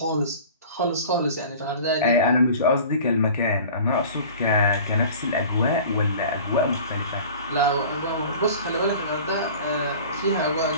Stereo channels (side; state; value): both; inverted; correlation -0.42